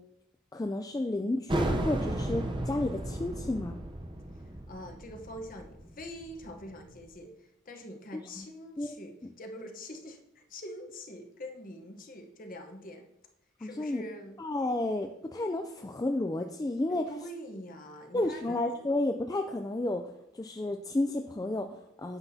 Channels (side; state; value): both; normal; correlation 0.79